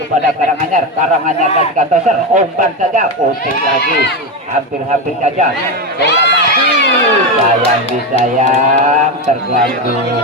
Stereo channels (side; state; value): both; normal; correlation 0.14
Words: kepada Karanganyar. Karanganyar kasihkan toser, umpan saja, pusing lagi, hampir-hampir saja bola mati, sayang disayang, terganggu